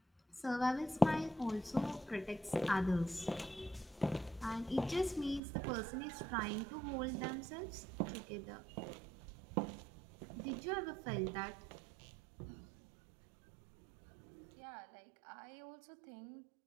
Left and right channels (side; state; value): left; drops out; at 5.4 s